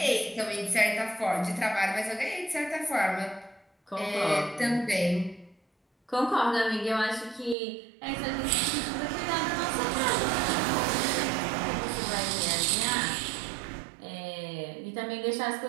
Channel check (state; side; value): drops out; left; at 7.6 s